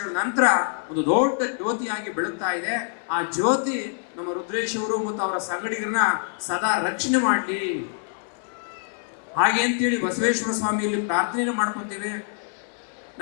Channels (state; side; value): silent; right; 59 dB below the other